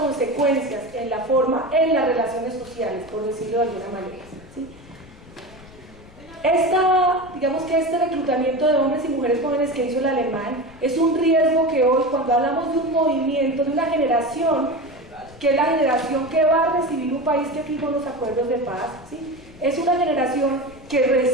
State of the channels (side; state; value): left; noise; rumble, 21 dB below the sound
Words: en las relaciones sociales, por decirlo de alguna manera, ¿sí? Este reclutamiento de hombres y mujeres jóvenes que hizo el alemán es un riesgo que hoy, cuando hablamos de un movimiento, de una generación, que es la generación que va a recibir un país que firmó los acuerdos de paz, ¿sí? Es una generación que